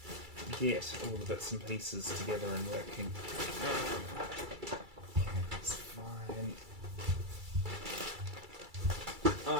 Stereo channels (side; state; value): left; late; 2.3 ms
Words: get all the bits and pieces together and working. Okay, that's fine.